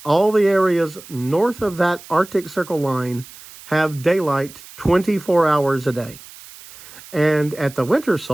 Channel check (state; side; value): noise; right; hiss, 19 dB below the sound